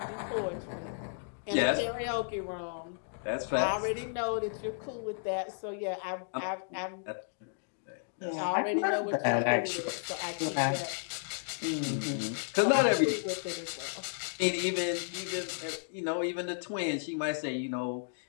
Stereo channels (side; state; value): right; silent; digital silence